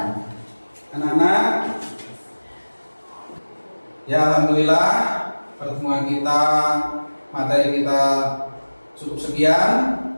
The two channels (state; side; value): inverted; both; correlation -1.00